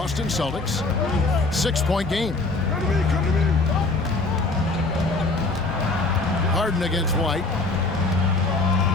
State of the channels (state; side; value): quieter; right; 3.4 dB